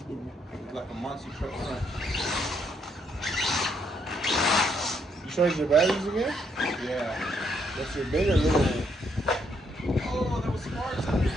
like a monster truck front. You charge your batteries again? Yeah. That's your big or little one? Oh, there was sparks under it.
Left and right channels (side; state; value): both; normal; correlation 0.73